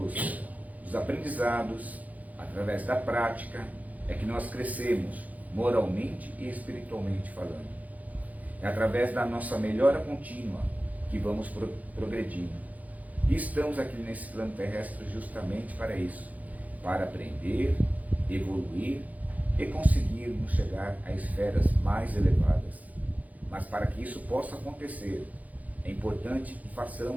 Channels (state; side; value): late; left; 0.077 ms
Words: aprendizados, através da prática, é que nós crescemos moralmente e espiritualmente falando. É através da nossa melhora contínua que vamos progredindo. E estamos aqui nesse plano terrestre justamente para isso, para aprender, evoluir e conseguirmos chegar a esferas mais elevadas. Mas para que isso possa acontecer, é importante que